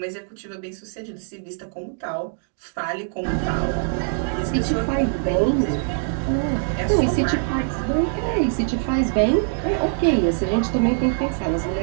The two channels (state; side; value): silent; left; digital silence